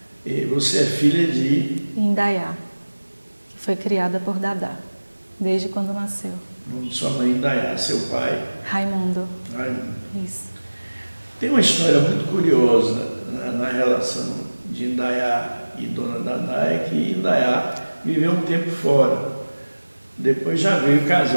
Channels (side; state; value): both; inverted; correlation -1.00